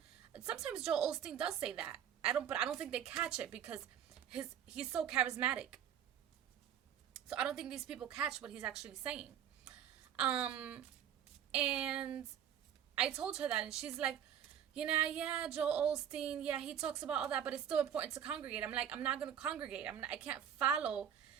sometimes Joel Osteen does say that. But I don't think they catch it because he's so charismatic. So I don't think these people catch what he's actually saying. And I told her that, and she's like, yeah, Joel Osteen, yeah, he talks about all that, but it's still important to congregate. I'm like, I'm not going to congregate. I can't follow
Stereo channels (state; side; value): quieter; left; 9.4 dB